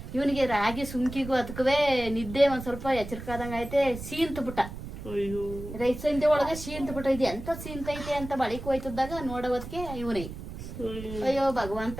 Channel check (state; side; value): noise; right; rumble, 10 dB below the sound